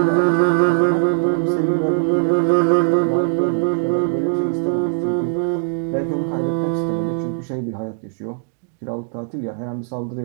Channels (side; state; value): left; silent; digital silence